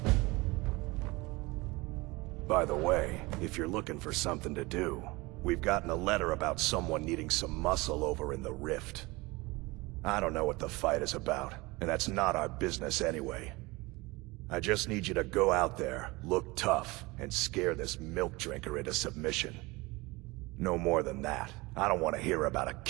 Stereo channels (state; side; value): quieter; left; 23.1 dB